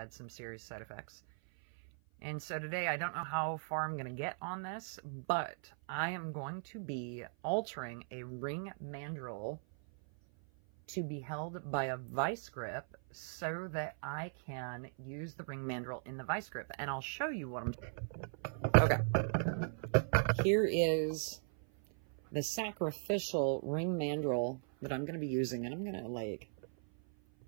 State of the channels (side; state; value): left; silent; 52 dB below the other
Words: some serious side effects. And so today, I don't know how far I'm going to get on this, but I am going to be altering a ring mandrel to be held by a vice grip so that I can use the ring mandrel in the vice grip. And I'll show you what I'm doing. Okay. Here is the sacrificial ring mandrel that I'm going to be using. And I'm going to like